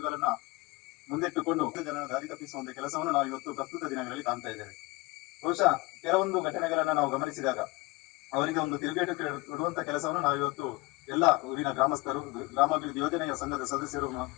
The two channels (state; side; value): quieter; right; 23.2 dB